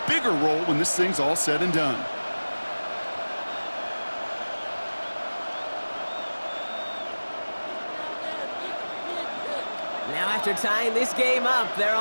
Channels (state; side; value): inverted; both; correlation -1.00